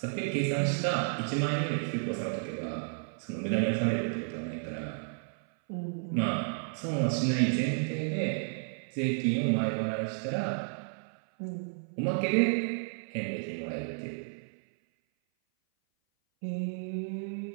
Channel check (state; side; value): silent; left; 56 dB below the other